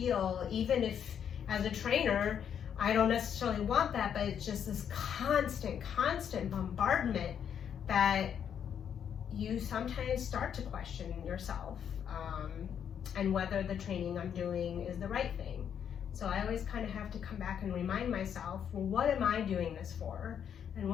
even if as a trainer, I don't necessarily want that, but it's just this constant bombardment that you sometimes start to question yourself, and whether the training I'm doing is the right thing. So I always kind of have to come back and remind myself, well, what am I doing this for? And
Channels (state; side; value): quieter; right; 8.4 dB